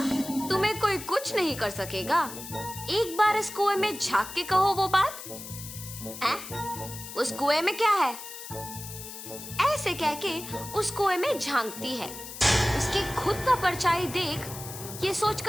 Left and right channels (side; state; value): left; noise; hiss, 11 dB below the sound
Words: तुम्हें कोई कुछ नहीं कर सकेगा? एक बार इस कुएं में झांक के कहो वो बात। उस कुएं में क्या है? ऐसे कह के उस कुएं में झांकती है। उसके खुद का परछाई देख ये